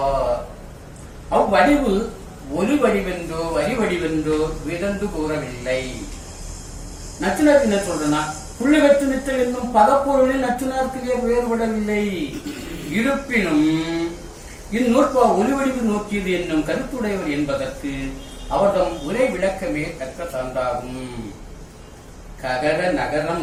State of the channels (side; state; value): both; identical; correlation 1.00